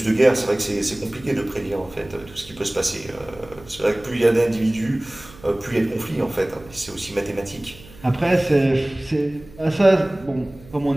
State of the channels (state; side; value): noise; right; hum, 21 dB below the sound